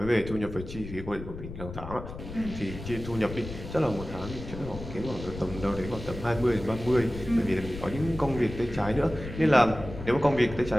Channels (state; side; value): noise; left; rumble, 10 dB below the sound